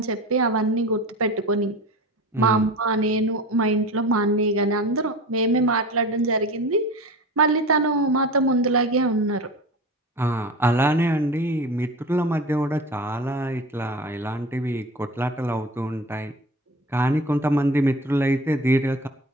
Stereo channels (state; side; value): normal; both; correlation 0.33